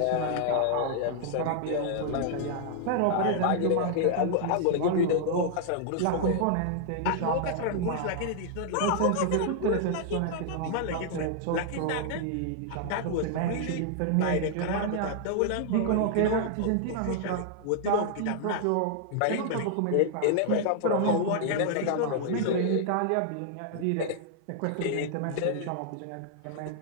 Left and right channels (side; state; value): both; different; correlation -0.01